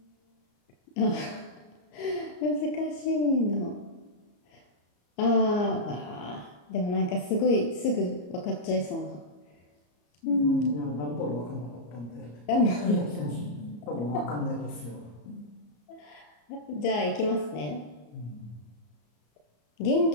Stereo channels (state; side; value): late; right; 34 ms